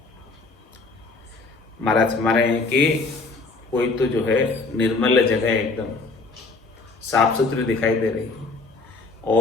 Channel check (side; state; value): right; quieter; 3.7 dB